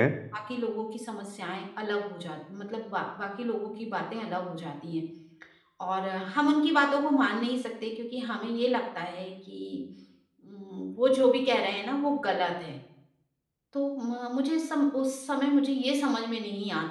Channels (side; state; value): both; identical; correlation 1.00